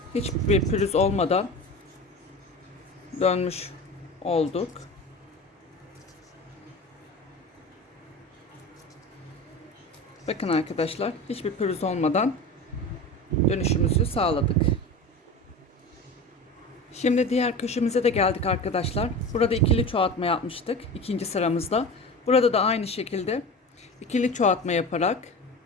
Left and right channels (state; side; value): normal; both; correlation 0.31